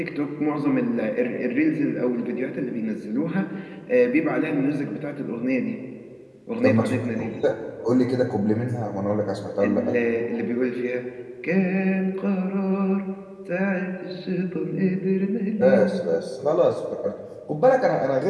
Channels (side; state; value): both; identical; correlation 1.00